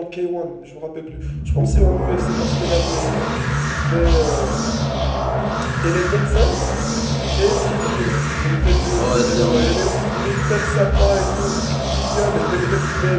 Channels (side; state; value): both; identical; correlation 1.00